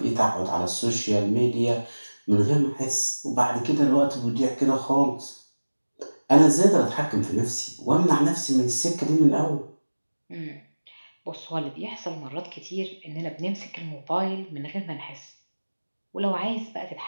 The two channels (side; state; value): both; inverted; correlation -1.00